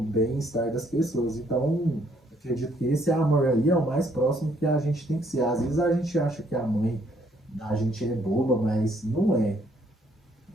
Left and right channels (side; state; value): both; normal; correlation 0.67